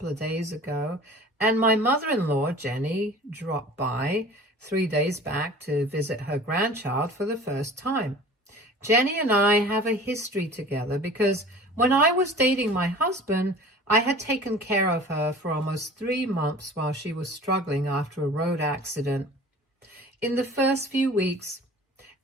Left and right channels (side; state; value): both; normal; correlation 0.43